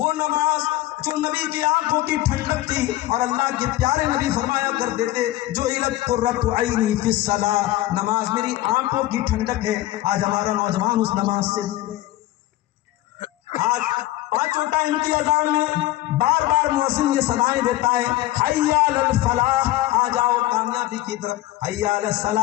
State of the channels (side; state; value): right; quieter; 15.9 dB